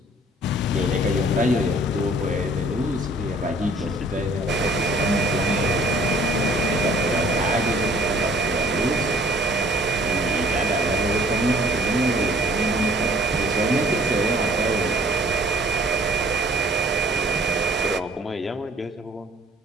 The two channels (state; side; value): normal; both; correlation 0.55